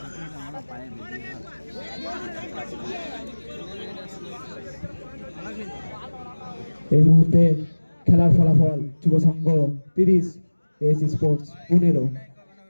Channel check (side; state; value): both; inverted; correlation -1.00